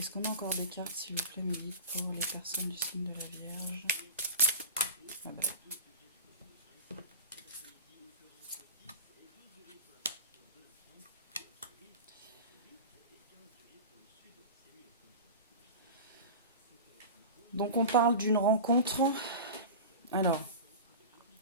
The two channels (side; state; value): both; inverted; correlation -0.30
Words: qu'on a encore des cartes, s'il vous plaît, mes guides, pour les personnes du signe de la Vierge? Ah bah. Donc on parle d'une rencontre. Alors,